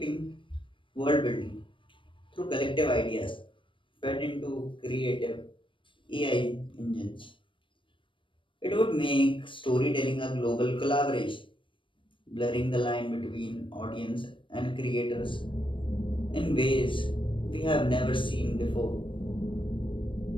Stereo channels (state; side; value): late; right; 0.25 ms